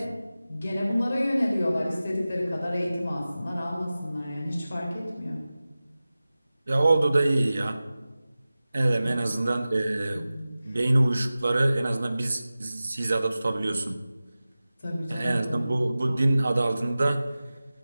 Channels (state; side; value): inverted; both; correlation -0.96